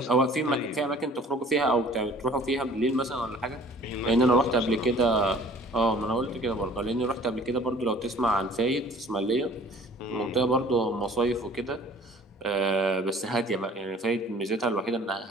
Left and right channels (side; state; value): both; normal; correlation 0.51